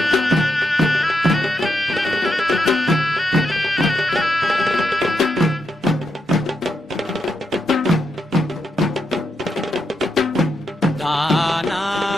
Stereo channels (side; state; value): both; normal; correlation 0.83